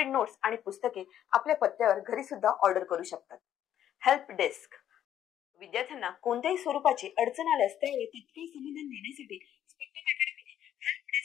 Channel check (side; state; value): right; quieter; 10.7 dB